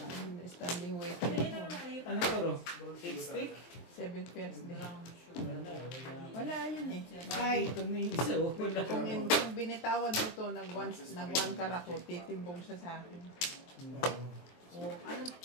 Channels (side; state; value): right; late; 23 ms